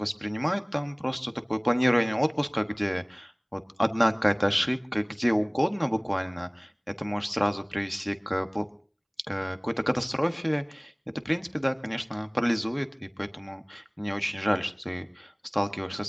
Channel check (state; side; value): identical; both; correlation 1.00